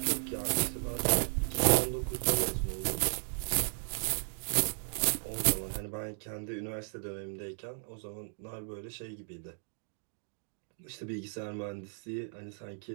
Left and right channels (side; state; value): left; silent; digital silence